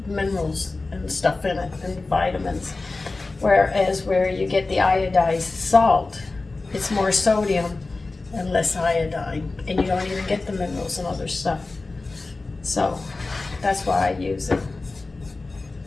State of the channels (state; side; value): quieter; right; 3.5 dB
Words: minerals and stuff in it, and vitamins. Whereas where you get the iodized salt, it's more sodium and less iodine, and you don't even get the minerals and other stuff. So that's why I use it.